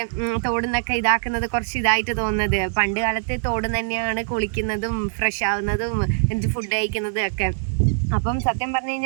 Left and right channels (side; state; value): left; silent; 64 dB below the other